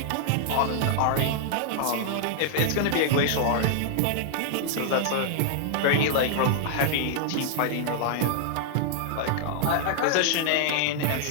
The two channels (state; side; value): different; both; correlation 0.00